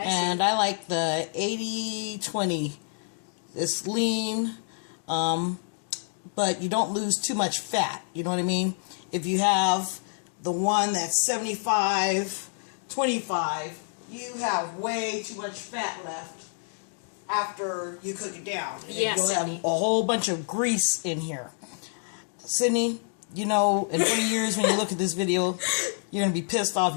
like the 80-20. It's lean. But you don't lose too much fat, you know what I mean? If you have the one that's 75-25, you have way too much fat left after you cook it down. And you'll have a whole bunch of grease in here. Sydney, you know, in 20 years when you look at this video, you're going to be pissed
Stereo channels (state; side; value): silent; right; 58 dB below the other